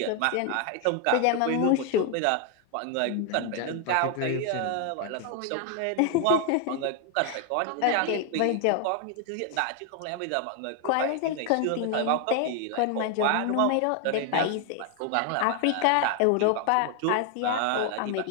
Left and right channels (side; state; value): both; different; correlation 0.00